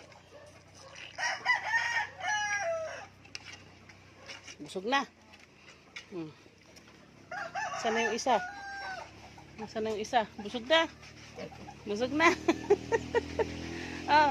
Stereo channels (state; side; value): identical; both; correlation 1.00